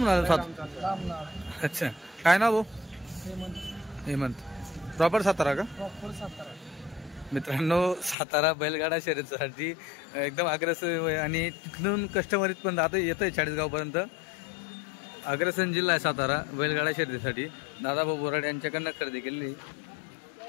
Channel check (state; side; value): drops out; right; at 8.2 s